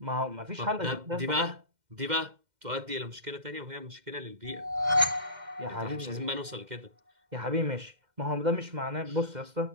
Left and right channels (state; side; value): late; left; 2.1 ms